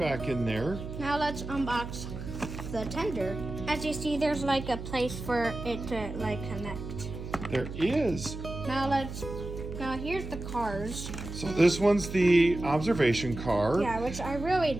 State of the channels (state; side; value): noise; right; hum, 8 dB below the sound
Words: in there. Now let's unbox the tender. As you see, there's like a place for it to like connect. There is. Now here's the cars. So this one's the observation car. Yeah, which I really